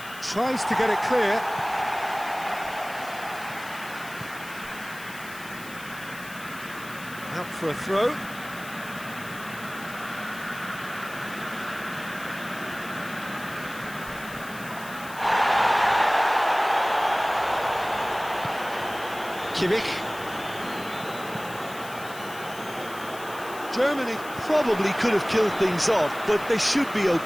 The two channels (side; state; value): left; noise; hiss, 16 dB below the sound